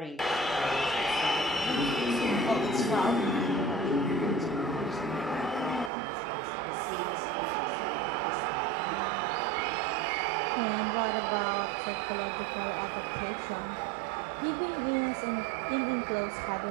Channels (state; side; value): drops out; left; at 5.9 s